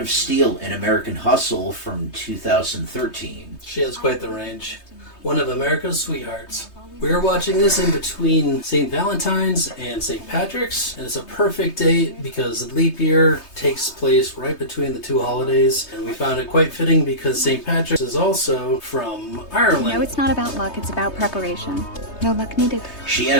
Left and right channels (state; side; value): late; right; 3.2 ms